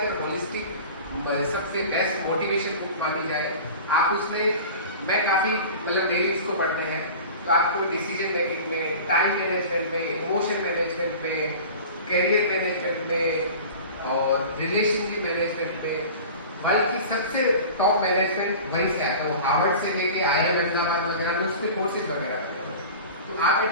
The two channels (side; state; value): both; inverted; correlation -0.38